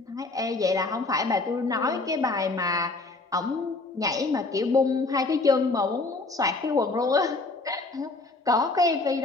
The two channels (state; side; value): quieter; right; 3.4 dB